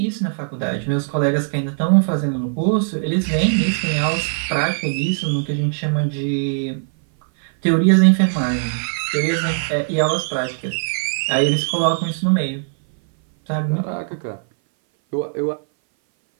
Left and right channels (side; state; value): left; silent; 60 dB below the other